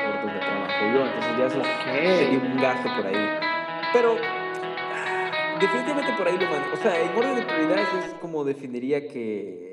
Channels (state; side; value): identical; both; correlation 1.00